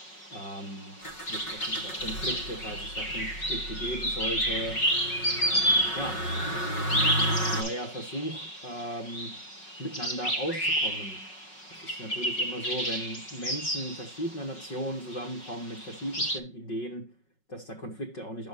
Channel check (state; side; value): late; right; 5.4 ms